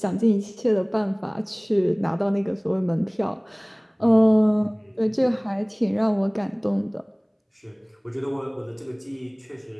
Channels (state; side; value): identical; both; correlation 1.00